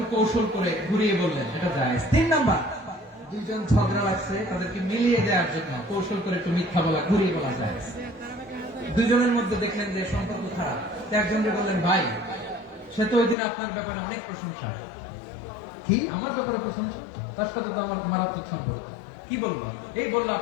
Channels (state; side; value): drops out; right; at 13.4 s